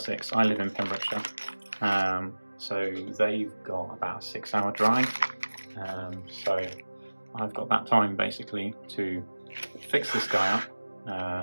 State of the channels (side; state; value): both; inverted; correlation -1.00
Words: I live in Pembrokeshire, so they've got about a 6-hour drive. So I've got that time basically to fix this guy